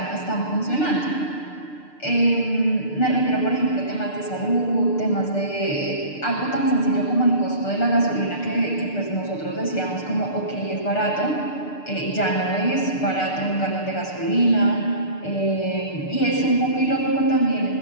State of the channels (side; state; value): right; late; 6.7 ms